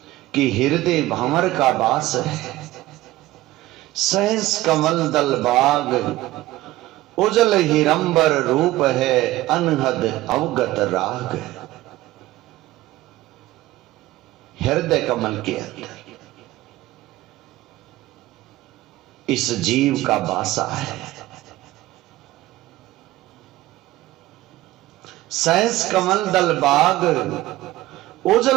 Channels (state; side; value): quieter; left; 16.8 dB